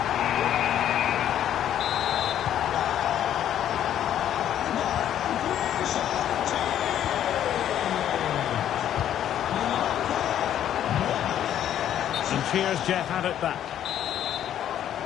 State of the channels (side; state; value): right; quieter; 10.7 dB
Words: Cheers, Jeff had it back.